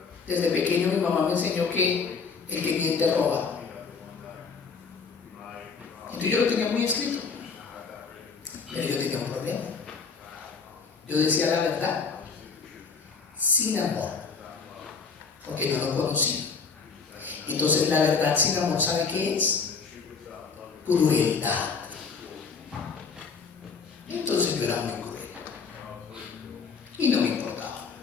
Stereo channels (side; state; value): right; quieter; 5.2 dB